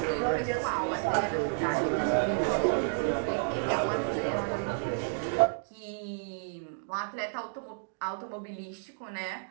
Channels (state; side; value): silent; left; digital silence